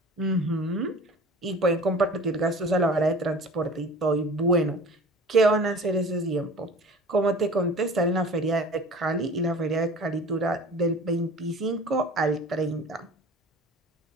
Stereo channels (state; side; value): normal; both; correlation 0.42